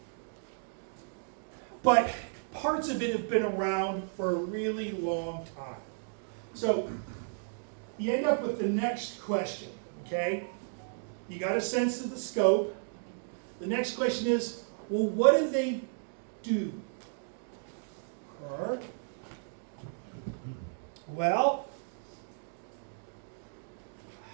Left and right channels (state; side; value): silent; left; digital silence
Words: But parts of it have been around for a really long time. So you end up with the next question, okay? You got a sense of the scope. The next question is, well, what do they do? Or, well,